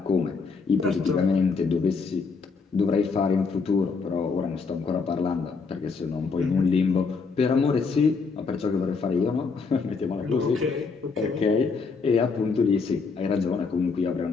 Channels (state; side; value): quieter; right; 4.8 dB